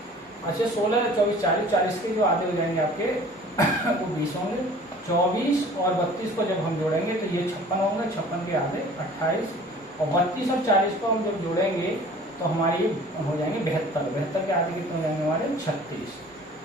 अच्छा 16 24 40, 40 के जो आधे हो जाएंगे आपके वो 20 होंगे। 24 और 32 को जब हम जोड़ेंगे तो ये 56 होंगे, 56 के आधे 28 और 32 और 40 को हम जब जोड़ेंगे तो हमारी हो जाएंगे 72, 72 के आधे कितने हो जाएंगे हमारे 36।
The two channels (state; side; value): normal; both; correlation 0.47